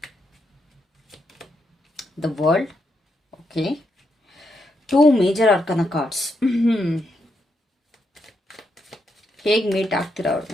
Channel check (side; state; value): both; normal; correlation 0.81